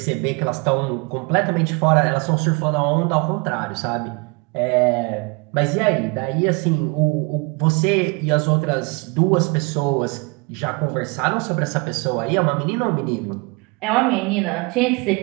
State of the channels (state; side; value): quieter; left; 29.9 dB